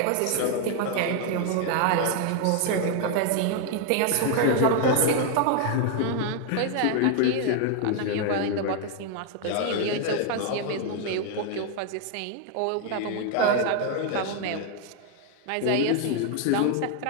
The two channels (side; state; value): both; different; correlation 0.00